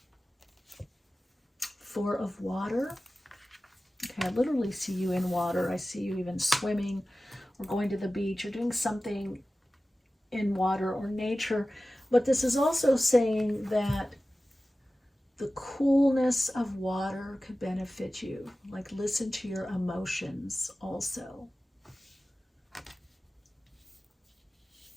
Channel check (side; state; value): both; normal; correlation 0.96